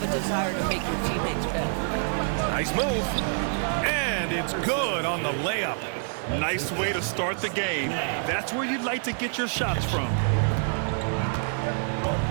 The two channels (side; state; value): left; silent; 59 dB below the other